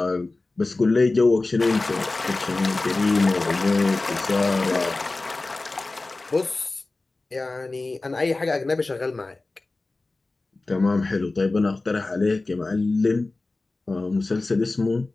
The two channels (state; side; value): quieter; right; 3.3 dB